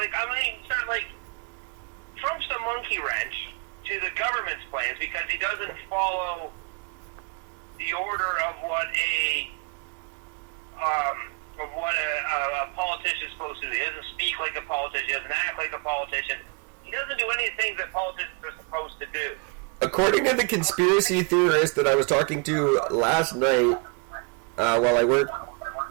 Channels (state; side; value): quieter; left; 33.1 dB